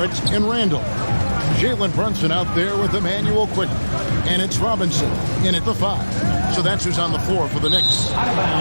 and Randall. Jalen Brunson out there with Emmanuel Quickly. And it's Robinson in at the 5. So that's who's on the floor for the Knicks.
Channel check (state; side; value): inverted; both; correlation -1.00